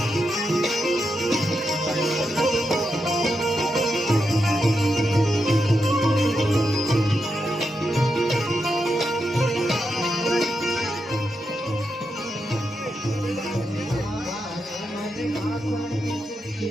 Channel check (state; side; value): normal; both; correlation 0.85